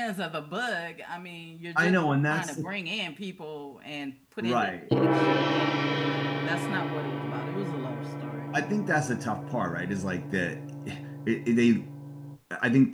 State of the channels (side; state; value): both; identical; correlation 1.00